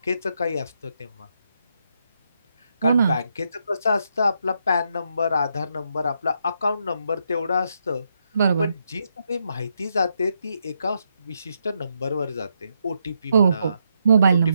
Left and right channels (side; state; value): both; inverted; correlation -0.79